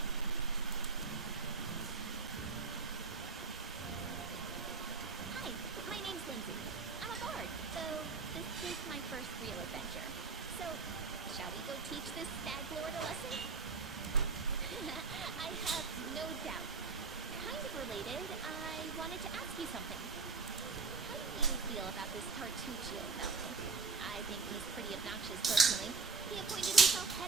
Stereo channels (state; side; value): quieter; left; 4.7 dB